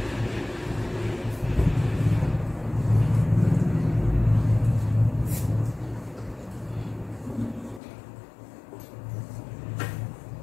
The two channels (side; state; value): right; drops out; at 7.8 s